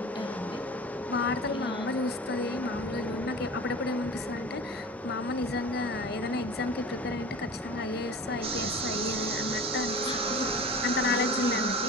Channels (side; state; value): both; normal; correlation 0.37